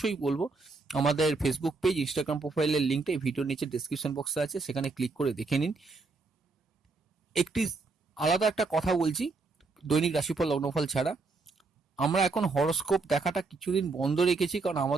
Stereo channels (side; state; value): left; quieter; 4.0 dB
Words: বলবো, আমাদের ফেসবুক পেজ, ইনস্টাগ্রাম প্রোফাইলের লিঙ্কটা এই ভিডিওর নিচে ডেসক্রিপশন বক্সে আছে, সেখানে ক্লিক করে দেখে নিন। একটি আলাদা একটা কথা বলছি, দৈনিক রাশিফল লগ্নফল ছাড়া আমরা এখন হরোস্কোপ দেখাটা কিছুদিন বন্ধ রেখেছি, কারণ